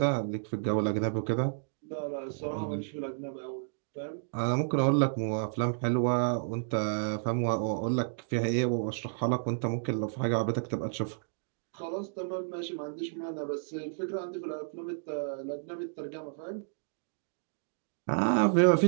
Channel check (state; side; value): silent; left; digital silence